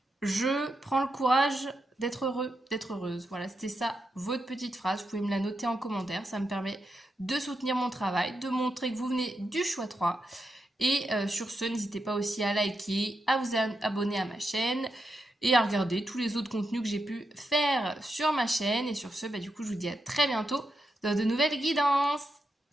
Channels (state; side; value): normal; both; correlation 0.85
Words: Je prends le courage d'être heureux, d'être heureuse. Voilà, c'était ça, votre petite phrase. Vous pouvez me la noter en commentaire. Ça me permet de soutenir mon travail, de montrer que vous venez du choix 3. Et sur ce, n'hésitez pas aussi à liker, à vous abonner à ma chaîne et à regarder tous les autres contenus que j'ai pu faire sur ma chaîne. Et sur ce, du coup, je vous dis à très bientôt dans de nouvelles guidances.